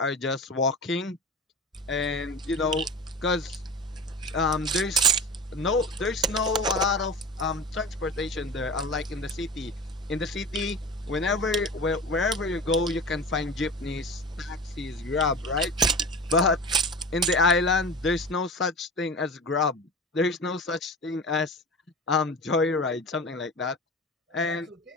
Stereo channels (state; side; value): normal; both; correlation 0.32